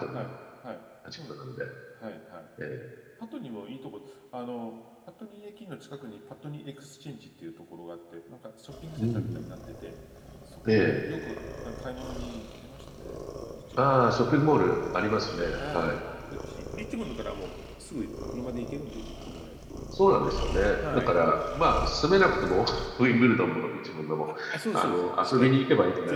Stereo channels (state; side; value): identical; both; correlation 1.00